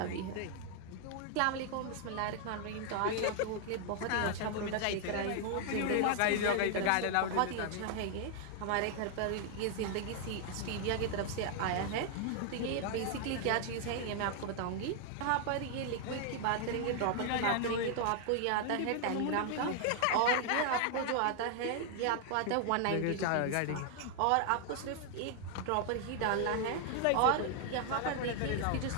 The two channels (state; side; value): different; both; correlation 0.00